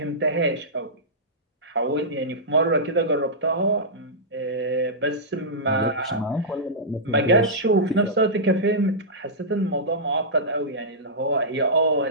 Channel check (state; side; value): normal; both; correlation -0.14